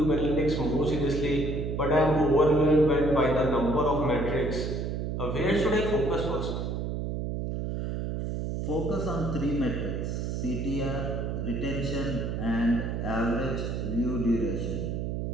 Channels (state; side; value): noise; right; hum, 2 dB below the sound